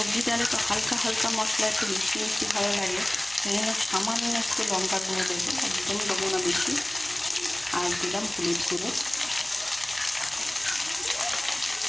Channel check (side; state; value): right; noise; hum, 23 dB below the sound